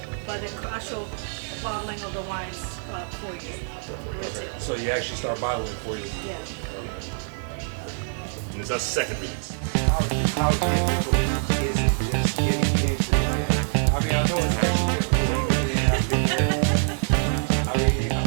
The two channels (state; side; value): silent; left; 62 dB below the other